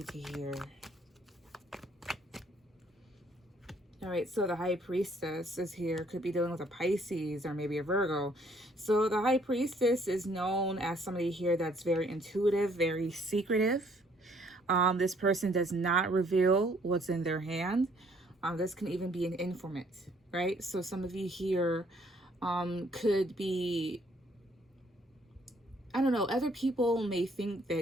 to hear? All right, so the High Priestess is here. Could be dealing with a Pisces or maybe a Virgo. So the High Priestess is known as somebody here that's very intuitive, very secretive. This person does not reveal what's in their hand. This can even be an informant, right? So some of you here could be, I don't know, other people may think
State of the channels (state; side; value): normal; both; correlation 0.64